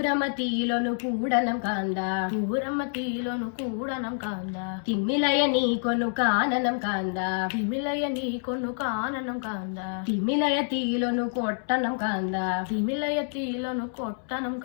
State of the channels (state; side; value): silent; right; 60 dB below the other